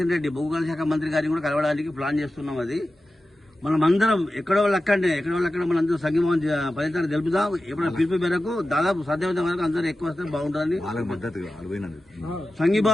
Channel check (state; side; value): normal; both; correlation 0.94